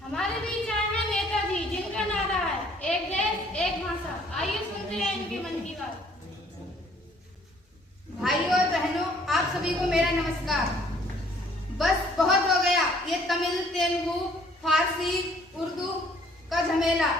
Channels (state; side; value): normal; both; correlation 0.60